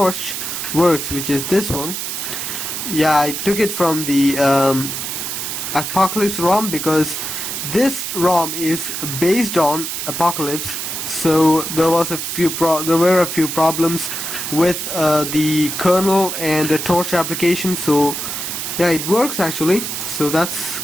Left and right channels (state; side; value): noise; right; hiss, 4 dB below the sound